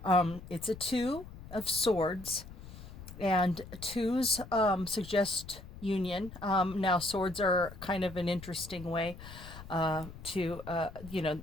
It's a two of swords, and twos suggest union. Now, swords are kind of an interesting way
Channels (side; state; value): left; noise; rumble, 15 dB below the sound